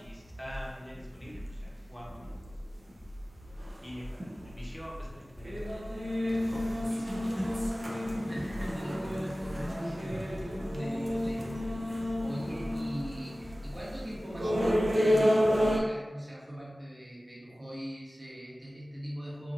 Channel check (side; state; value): both; normal; correlation 0.96